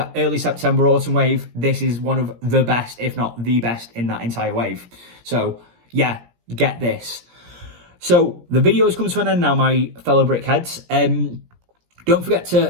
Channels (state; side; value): late; left; 17 ms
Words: early September autumn wave, this is one of the best, if not the best, in that entire wave. So yeah, get this. So the video has come to an end now, my fellow brickheads. Don't forget